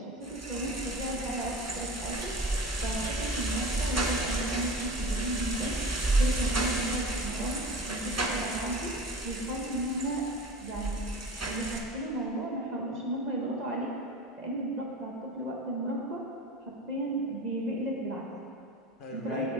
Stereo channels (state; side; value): normal; both; correlation 0.34